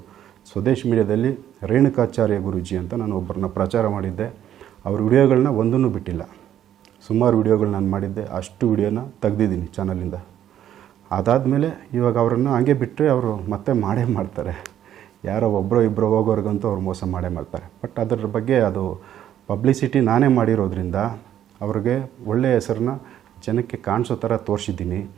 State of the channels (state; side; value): quieter; left; 10.9 dB